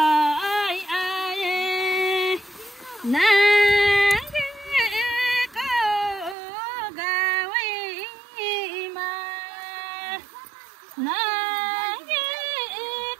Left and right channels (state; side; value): drops out; left; at 6.4 s